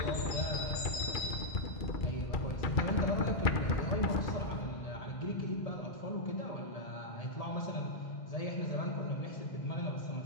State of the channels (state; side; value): late; right; 1.7 ms